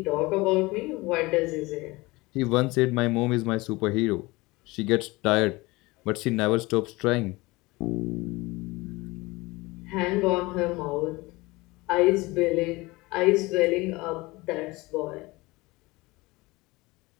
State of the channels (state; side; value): quieter; right; 22.3 dB